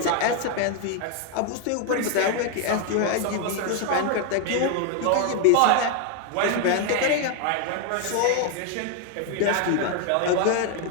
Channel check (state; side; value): different; both; correlation 0.00